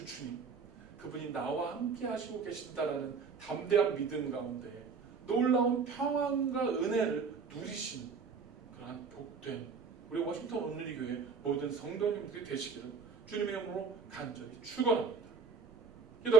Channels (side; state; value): left; quieter; 5.1 dB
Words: 주님, 그분이 나와 함께 하시고 계신다라는 담대한 믿음 가운데 놀라운 평안과 은혜를 누리신 그러한 복된 우리 워싱턴 온누리교회 모든 성도님들이 되시기를 주님의 이름으로 간절히 축원합니다.